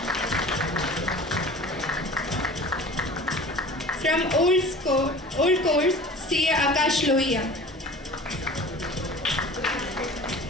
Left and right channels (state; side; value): normal; both; correlation 0.41